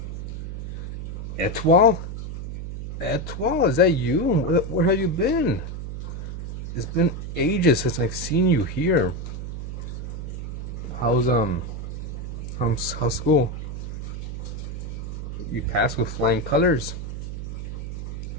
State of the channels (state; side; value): noise; right; hum, 6 dB below the sound